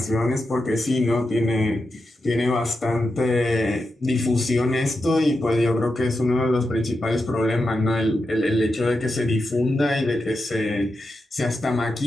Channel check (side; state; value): both; normal; correlation 0.88